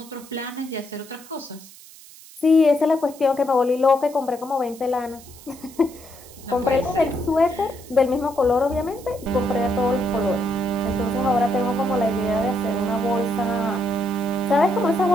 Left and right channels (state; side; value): noise; right; hiss, 20 dB below the sound